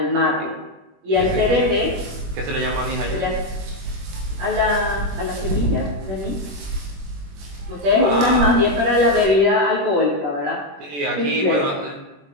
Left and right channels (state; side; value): late; left; 21 ms